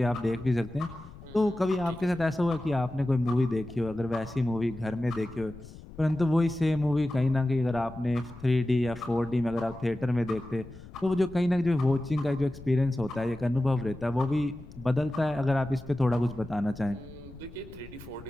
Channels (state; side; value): noise; left; rumble, 17 dB below the sound